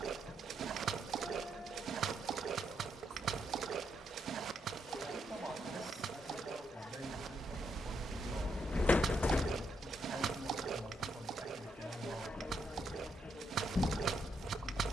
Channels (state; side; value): normal; both; correlation 0.78